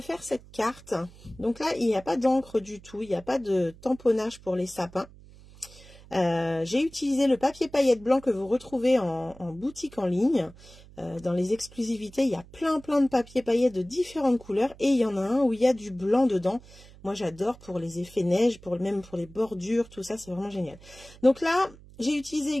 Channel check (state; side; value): noise; right; hum, 22 dB below the sound